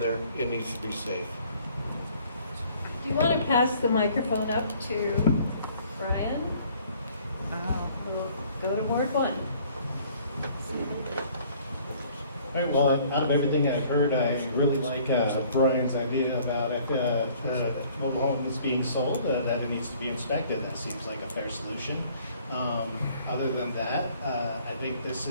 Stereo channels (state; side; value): inverted; both; correlation -0.57